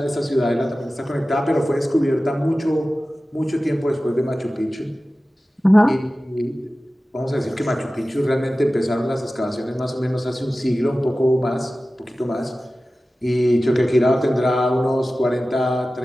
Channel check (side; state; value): both; normal; correlation 0.96